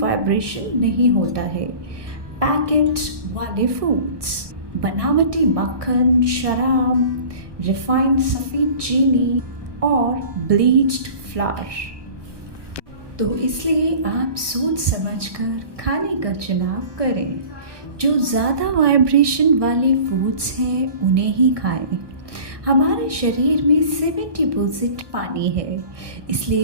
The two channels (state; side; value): late; left; 1.2 ms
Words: नहीं होता है, पैकेट वाले फूड्स, बनावटी मक्खन, शराब, रिफाइंड सफ़ेद चीनी और ब्लीच्ड फ्लावर। तो इसलिए आप सोच समझकर खाने का चुनाव करें। जो ज़्यादा वाइब्रेशन वाले फूड्स हैं उन्हें ही खाएं। हमारे शरीर में 70% पानी है,